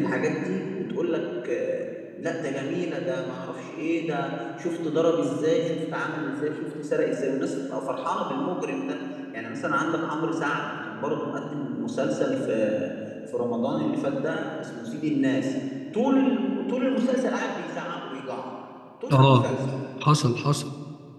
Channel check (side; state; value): both; identical; correlation 1.00